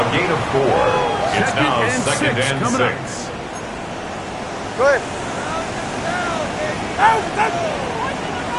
gain of 4. It's now second and coming up. 6. Go ahead. Out, out.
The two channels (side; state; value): both; identical; correlation 1.00